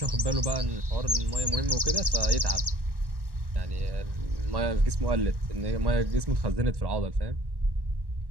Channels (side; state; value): left; late; 1.1 ms